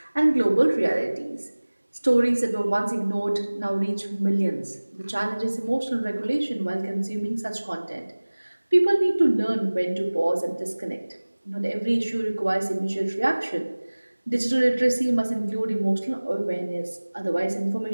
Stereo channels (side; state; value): both; inverted; correlation -1.00